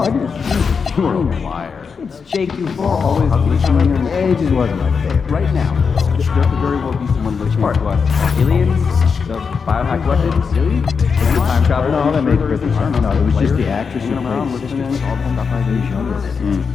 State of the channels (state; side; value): quieter; right; 5.7 dB